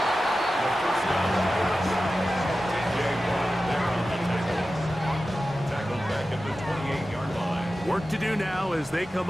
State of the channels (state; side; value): normal; both; correlation 0.94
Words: The first down. Jaguars there on the tackle. Tackled back at the 28-yard line. Work to do now as they come